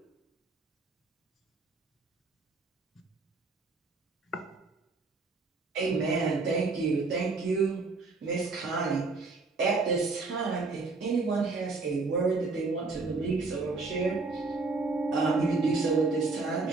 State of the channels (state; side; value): quieter; left; 3.8 dB